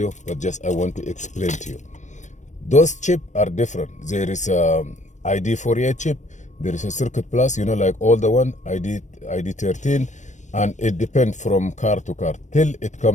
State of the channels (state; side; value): late; right; 0.35 ms